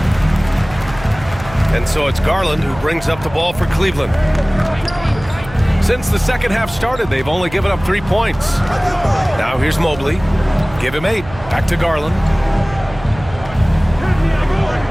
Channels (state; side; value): noise; right; hum, 16 dB below the sound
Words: And so it's Garland who brings up the ball for Cleveland. Since the second half started, they've only given up 3 points. Now here's Mobley. Give him 8. Back to Garland.